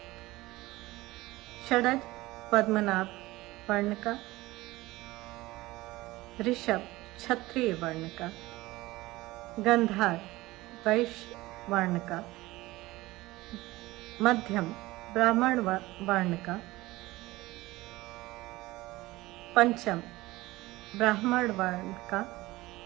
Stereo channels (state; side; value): quieter; left; 19.2 dB